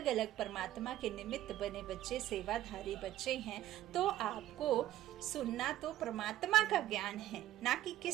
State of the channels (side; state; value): left; quieter; 13.6 dB